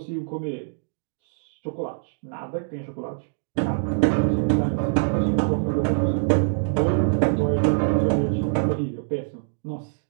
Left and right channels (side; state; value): left; silent; digital silence